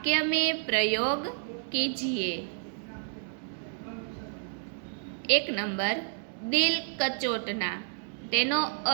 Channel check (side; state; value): left; silent; 58 dB below the other